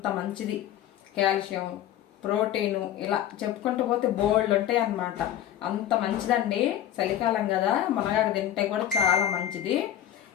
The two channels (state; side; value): quieter; right; 11.3 dB